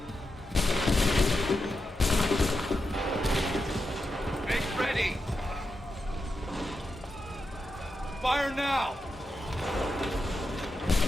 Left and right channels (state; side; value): normal; both; correlation 0.87